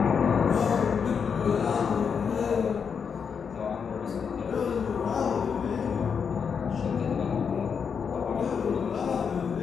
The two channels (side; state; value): right; quieter; 6.5 dB